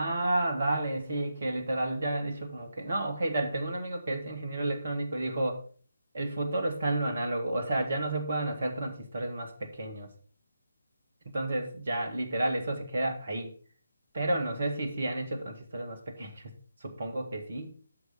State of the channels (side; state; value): both; inverted; correlation -0.86